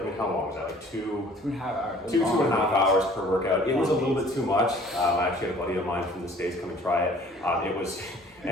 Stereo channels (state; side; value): normal; both; correlation 0.52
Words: I mean, how long was that? Like 2.5 hours. 2.5 hours per workout. It was a little bit too much. I actually had a buddy of mine from the States come and try it. It was.